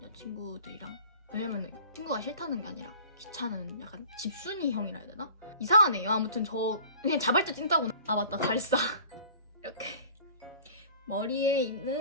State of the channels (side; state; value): both; inverted; correlation -0.45